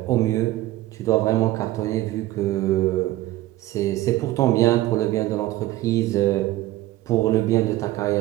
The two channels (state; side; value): quieter; left; 16.2 dB